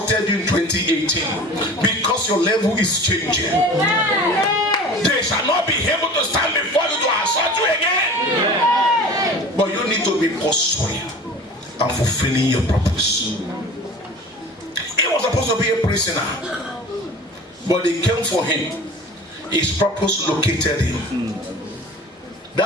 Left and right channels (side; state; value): both; normal; correlation 0.39